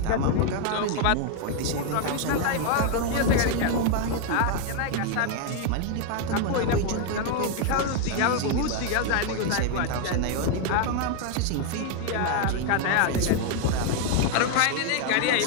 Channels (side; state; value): both; different; correlation 0.01